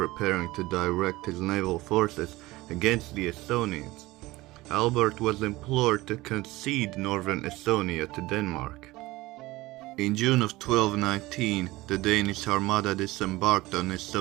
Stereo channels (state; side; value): quieter; left; 19.5 dB